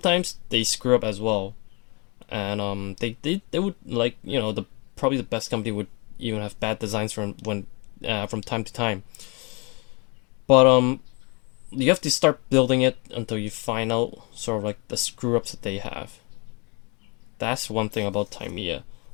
they screw up as well. And they would, like, you know, probably the best company would even have bad designs from time to time. But you have to start building it until you find out sort of like the screw ups that they have. That's one thing about Tamiya.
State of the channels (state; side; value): quieter; right; 30.8 dB